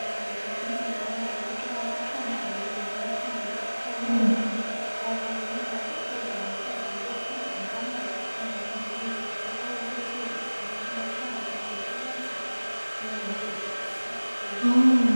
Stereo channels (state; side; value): inverted; both; correlation -1.00